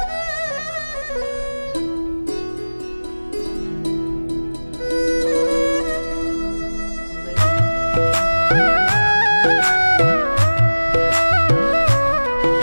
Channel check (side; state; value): both; inverted; correlation -1.00